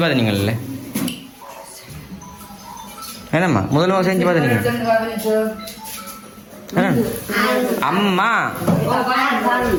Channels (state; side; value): identical; both; correlation 1.00